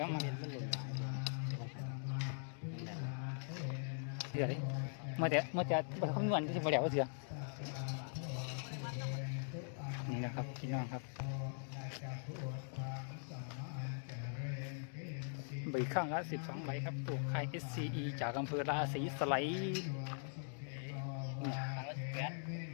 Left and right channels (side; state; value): right; silent; digital silence